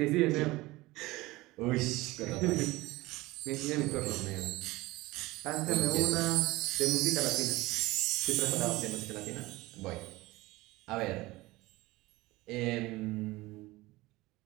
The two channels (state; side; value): quieter; left; 20.0 dB